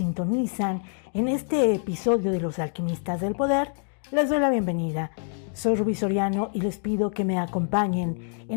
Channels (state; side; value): silent; right; 61 dB below the other